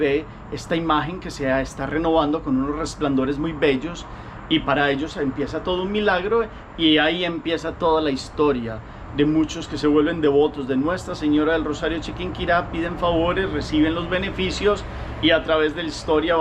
esta imagen que se está renovando con unos resplandores muy bellos, y para ellos empieza todo un milagro, y ahí empieza toda la historia de muchos que se vuelven devotos de Nuestra Señora del Rosario Chiquinquirá, piden favores, reciben los beneficios, y a través de la historia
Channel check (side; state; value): both; identical; correlation 1.00